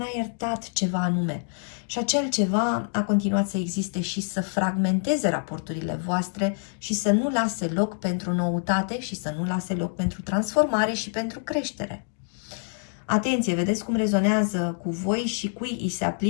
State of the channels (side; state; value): right; silent; 61 dB below the other